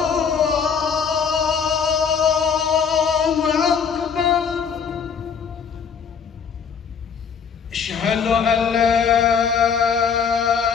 Akbar. Asyhadu an la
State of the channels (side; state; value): right; quieter; 6.6 dB